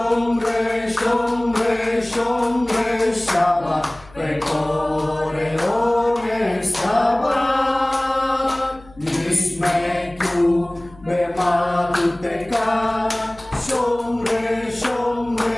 shomre shomre shabbat, pekore one shabbat. Yismeku bemalakuteka, shomre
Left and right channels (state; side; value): noise; left; hum, 24 dB below the sound